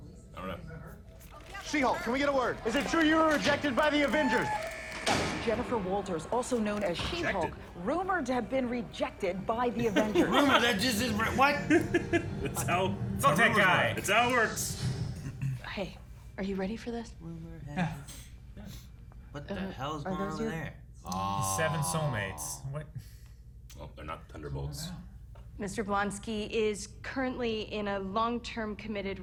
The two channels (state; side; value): identical; both; correlation 1.00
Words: I don't know. She-Hulk, can we get a word? Is it true you were rejected by the Avengers? That was Jennifer Walters, also known as She-Hulk, rumored to have been rejected by the Avengers. Rumor, that just is what? That's how. Fuck that guy. It's how it works. Hey, are you ready for this? What the hell is going on over there? Seven soulmates. What? Well, they're not Thunderbolts. Mr. Blonsky is currently in a long-term committed